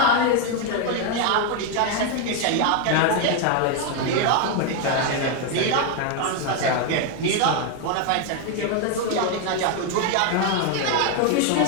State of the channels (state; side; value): different; both; correlation 0.01